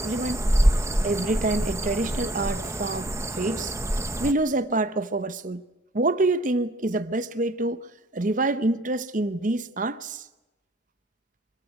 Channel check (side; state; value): both; normal; correlation 0.57